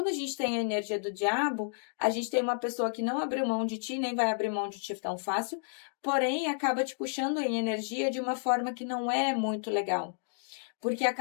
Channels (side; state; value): right; silent; digital silence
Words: a gente tem a energia do diabo, a gente tem uma pessoa que não abriu mão de ti, nem vai abrir mão de ti tão fácil, porém acaba te puxando em energia de uma forma que não é muito legal. Porque a